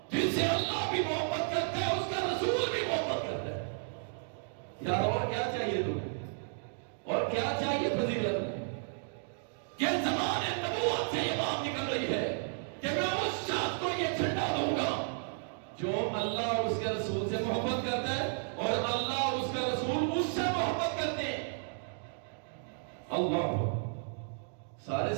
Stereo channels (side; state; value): left; silent; digital silence